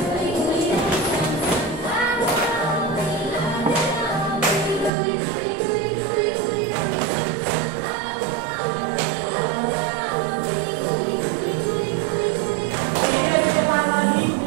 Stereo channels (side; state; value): left; drops out; at 4.9 s